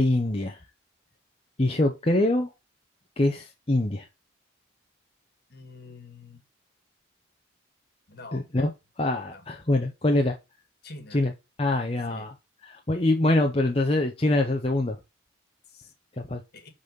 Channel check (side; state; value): both; normal; correlation 0.74